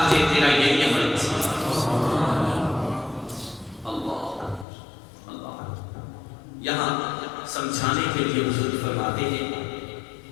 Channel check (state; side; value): drops out; right; at 4.7 s